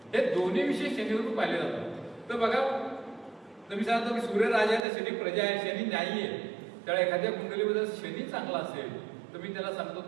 हे दोन्ही विषय शनीवरून पाहिले जातात। तर बघा तुम्ही सांगतो की सूर्य राजा आहे तर शनी प्रजा आहे, शनी न्यायी आहे। त्यामुळे एखाद्या कुंडलीमध्ये शनी चांगला असेल तर मी त्याला सांगतो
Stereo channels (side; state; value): left; drops out; at 4.9 s